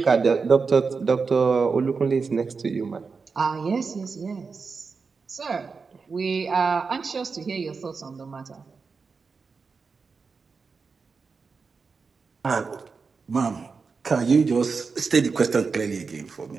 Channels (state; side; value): quieter; left; 4.9 dB